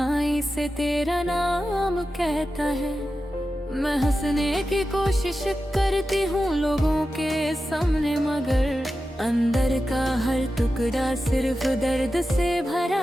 से तेरा नाम कहता है। मैं हंसने की कोशिश करती हूँ लोगों के सामने, मगर अंदर का हर टुकड़ा सिर्फ दर्द से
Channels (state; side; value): normal; both; correlation 0.92